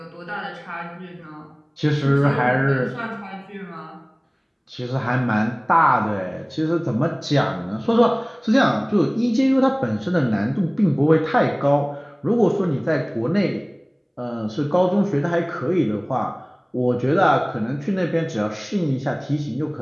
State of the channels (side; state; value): both; identical; correlation 1.00